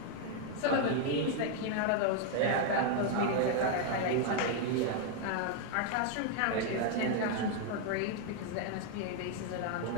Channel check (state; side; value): different; both; correlation 0.00